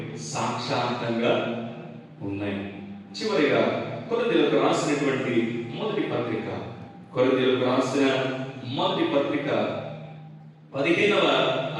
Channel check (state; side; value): identical; both; correlation 1.00